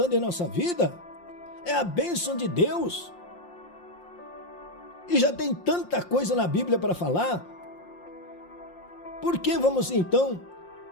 em nossa vida. É a bênção de Deus. E já tem tanta coisa na Bíblia para falar. Por que vamos então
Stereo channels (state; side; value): late; right; 5.7 ms